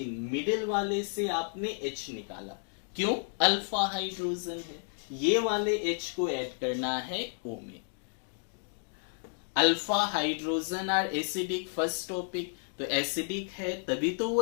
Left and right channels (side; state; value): right; silent; digital silence